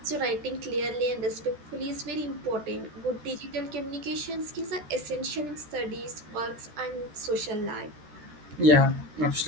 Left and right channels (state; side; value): late; left; 13 ms